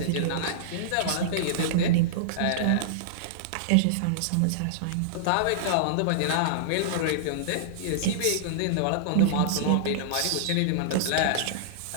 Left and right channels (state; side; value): different; both; correlation -0.02